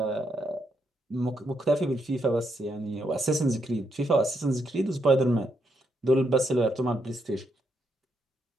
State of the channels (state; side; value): normal; both; correlation 0.78